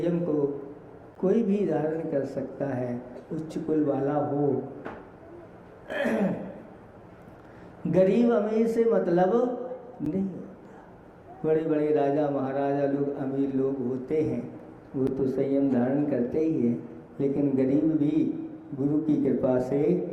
को कोई भी धारण कर सकता है, उच्च कुल वाला हो, गरीब अमीर से मतलब नहीं होता। बड़े बड़े राजा महाराजा लोग, अमीर लोग होते हैं, वो तो संयम धारण करते ही हैं, लेकिन गरीब भी गुरु की कृपा से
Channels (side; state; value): both; identical; correlation 1.00